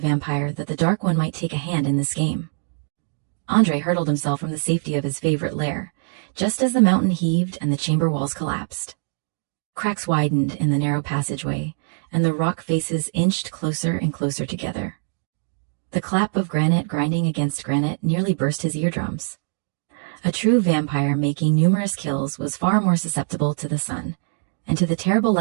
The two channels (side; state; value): left; silent; digital silence